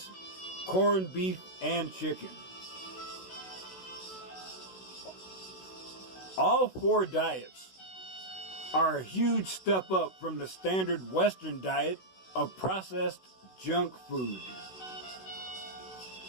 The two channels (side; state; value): right; late; 16 ms